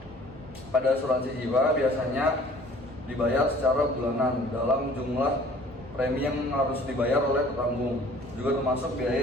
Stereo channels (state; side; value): normal; both; correlation 0.52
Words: pada asuransi jiwa biasanya dibayar secara bulanan dalam jumlah premi yang harus dibayar oleh petanggung, juga termasuk